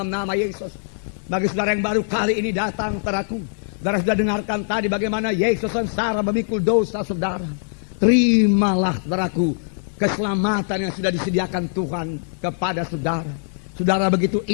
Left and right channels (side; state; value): right; silent; 60 dB below the other